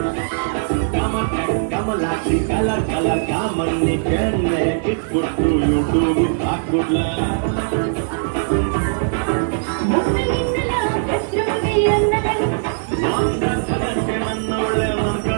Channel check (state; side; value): silent; left; digital silence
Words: ಕಲರ್ ಕಲರ್ ಕಾಮಣ್ಣಿ ಕೆನ್ನೆ ಕಿಟ್ಬಿಟ್ಟು ಯೂಟ್ಯೂಬ್ ಹಾಕ್ಬಿಡ್ಲ ನನ್ನ ಒಳ್ಳೆ